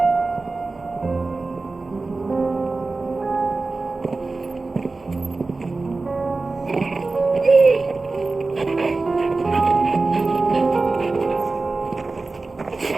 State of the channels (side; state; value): left; quieter; 3.6 dB